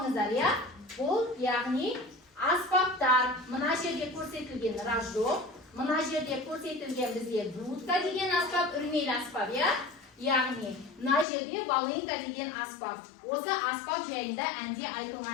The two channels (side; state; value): right; drops out; at 11.2 s